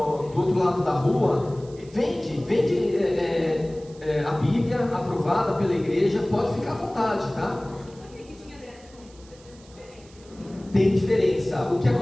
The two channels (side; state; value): right; noise; hiss, 25 dB below the sound